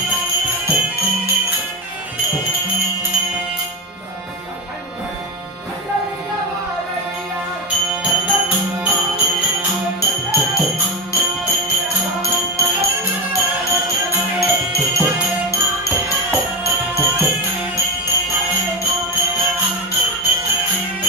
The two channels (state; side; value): normal; both; correlation 0.17